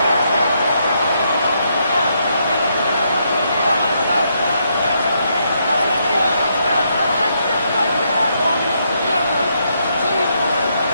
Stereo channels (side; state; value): both; inverted; correlation -0.77